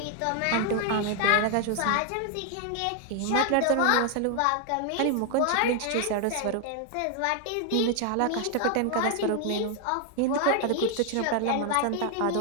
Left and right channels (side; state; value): both; different; correlation 0.00